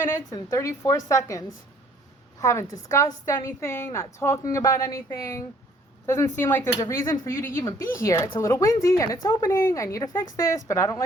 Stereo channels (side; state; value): both; normal; correlation 0.60